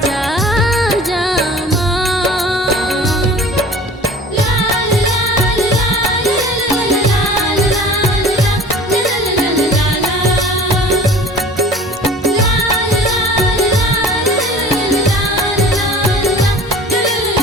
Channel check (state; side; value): normal; both; correlation 0.44